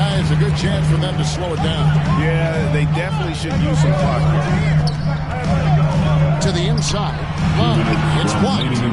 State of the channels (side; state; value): both; identical; correlation 1.00